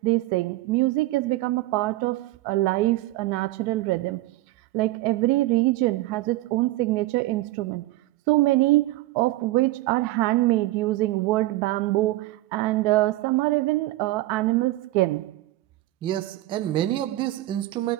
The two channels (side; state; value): left; quieter; 17.8 dB